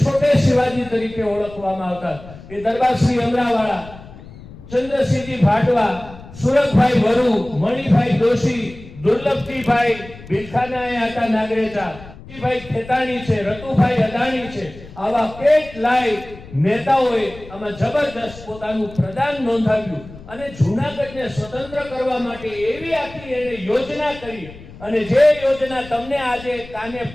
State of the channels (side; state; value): left; noise; rumble, 17 dB below the sound